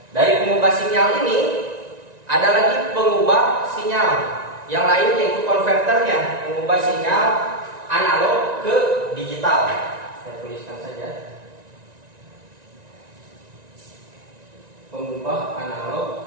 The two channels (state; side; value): late; left; 1.9 ms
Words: Dari pengubah sinyal ini ada lagi pengubah sinyal yang lain, yaitu konverternya, mengubah sinyal analog ke digital. Saya tuliskan saja. Pengubah